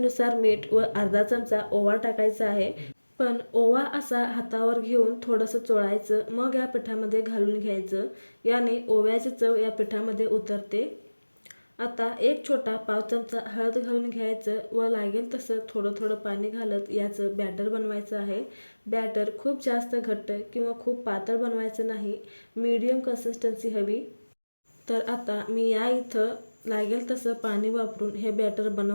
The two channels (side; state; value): both; inverted; correlation -1.00